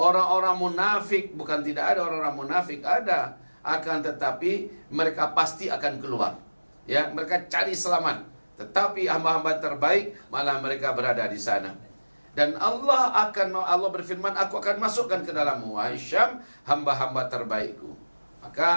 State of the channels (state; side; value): inverted; both; correlation -1.00